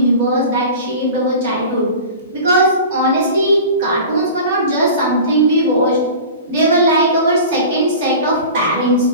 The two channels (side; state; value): both; inverted; correlation -0.37